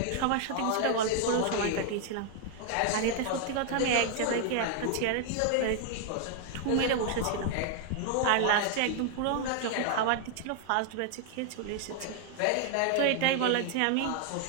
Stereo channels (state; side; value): different; both; correlation 0.00